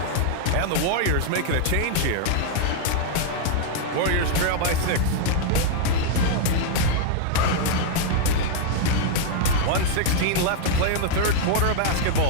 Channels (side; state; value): both; different; correlation -0.01